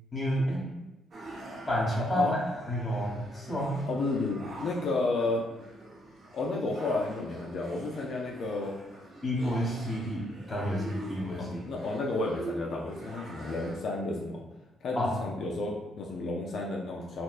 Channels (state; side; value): normal; both; correlation 0.72